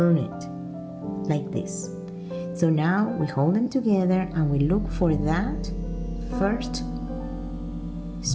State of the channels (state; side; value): identical; both; correlation 1.00